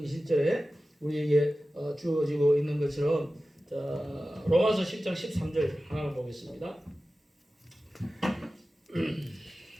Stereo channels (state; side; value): normal; both; correlation 0.95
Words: 20절에 우리에게 주어지고 있는 것처럼, 자, 로마서 10장 13절 하나 보겠습니다.